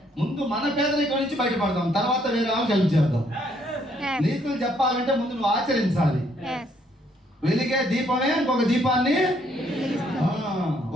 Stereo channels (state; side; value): normal; both; correlation 0.69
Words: ముందు మన పేదరికం నుంచి బయటపడదాం, తర్వాత వేరే వాళ్ళకి హెల్ప్ చేద్దాం. నీతులు చెప్పాలంటే ముందు నువ్వు ఆచరించాలి. వెలిగే దీపమే ఇంకొక దీపాన్ని.